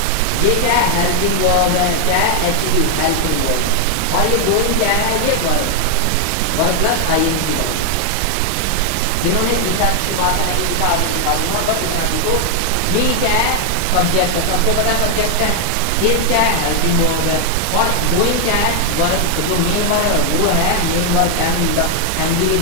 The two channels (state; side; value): different; both; correlation 0.00